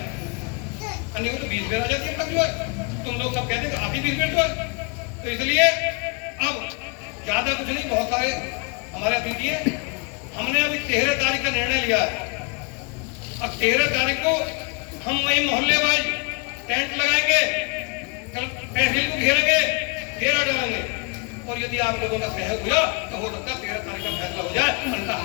नहीं वो तो 20 बेर आ जाती है तब जो है, तुम लोग सब कहते हैं आप ही 20 बेर तो, तो इसलिए अब ज्यादा कुछ नहीं, बहुत सारे हमारे अतिथि है। हमने अभी 13 तारीख का निर्णय लिया है। अब 13 तारीख को हम वही मोहल्ले वाइज टेंट लगाएंगे, तहसील को घेरेंगे, घेरा डालेंगे, और यदि आप लोगों का सहयोग हुआ तो हो सकता है 13 तारीख का फैसला हो जाए, अन्यथा हम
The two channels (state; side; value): quieter; right; 34.1 dB